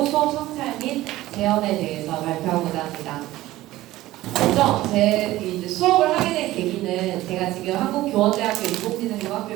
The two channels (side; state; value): left; quieter; 16.5 dB